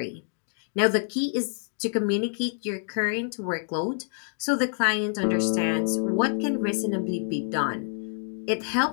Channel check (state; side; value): silent; right; 60 dB below the other